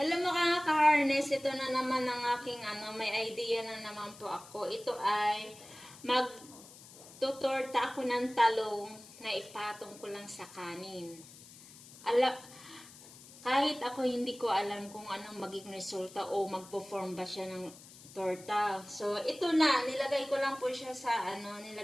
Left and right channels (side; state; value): left; noise; hiss, 19 dB below the sound